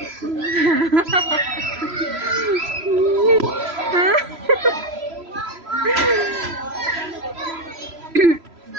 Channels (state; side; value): late; left; 3.0 ms